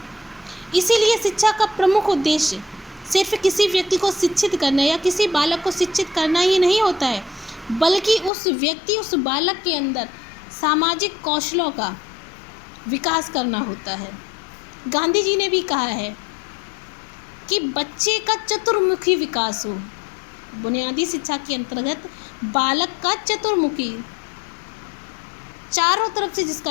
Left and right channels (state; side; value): drops out; right; at 8.3 s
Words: इसीलिए शिक्षा का प्रमुख उद्देश्य सिर्फ किसी व्यक्ति को शिक्षित करना या किसी बालक को शिक्षित करना ही नहीं होता है, बल्कि उस व्यक्ति, उस बालक के अंदर सामाजिक कौशलों का विकास करना होता है। गांधी जी ने भी कहा है कि बच्चे का चतुर्मुखी विकास हो। बुनियादी शिक्षा के अंतर्गत बालक का चतुर्मुखी, चारों तरफ से